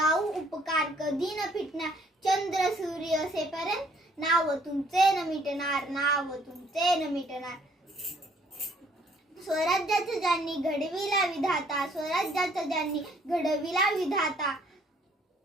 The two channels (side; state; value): both; normal; correlation 0.63